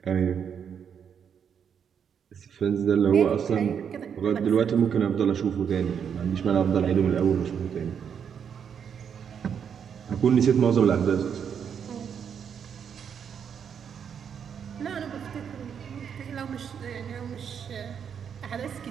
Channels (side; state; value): left; quieter; 7.6 dB